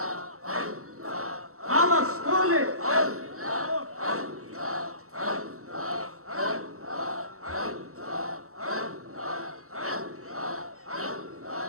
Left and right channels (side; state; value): left; late; 0.64 ms